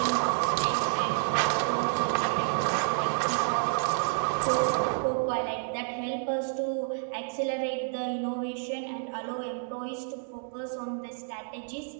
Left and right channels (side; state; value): left; silent; digital silence